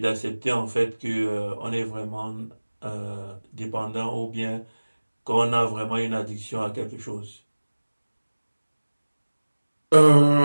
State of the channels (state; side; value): inverted; both; correlation -1.00